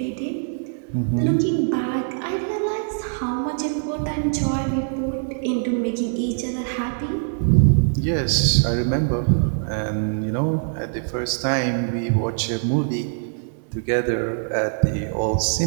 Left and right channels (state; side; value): silent; left; digital silence